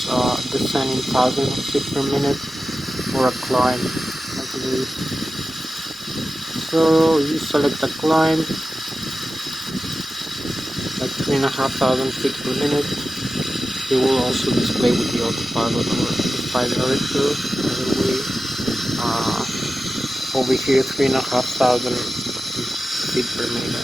descent in thousands of feet per minute, or a climb like this. So you select a climb like 3,500 feet per minute. It will also display with the autopilot or the flight director. By the way, over here 3,500 feet per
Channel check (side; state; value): both; normal; correlation 0.93